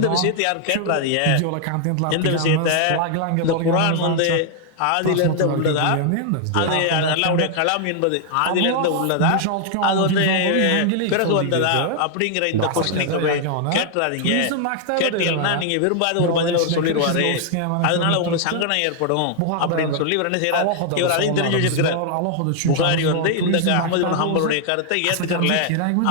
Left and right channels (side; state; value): both; different; correlation 0.00